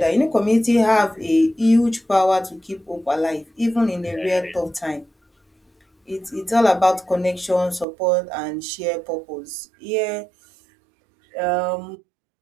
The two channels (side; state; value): left; drops out; at 7.9 s